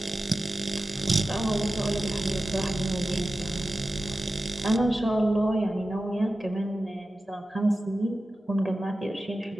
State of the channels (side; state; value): both; normal; correlation 0.95